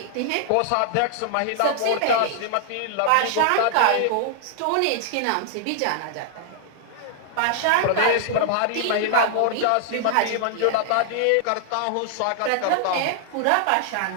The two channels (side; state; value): both; different; correlation -0.01